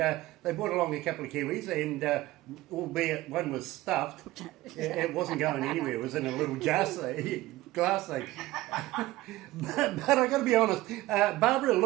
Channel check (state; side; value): quieter; left; 17.5 dB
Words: brought along a couple of kiwis, and albeit one was stuffed, it wasn't going anywhere. It was in a little glass thing. But I got to be honest, Barbara